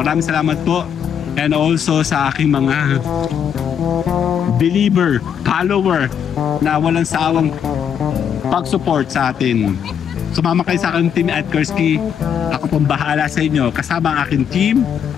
salamat po. And also sa aking mga believer, follower na walang sawang pag-support sa atin. Sumama kayo sa aking Team at Kursky. Ako pong bahala sa inyo. Kasama ang aking team.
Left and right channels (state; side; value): quieter; right; 8.2 dB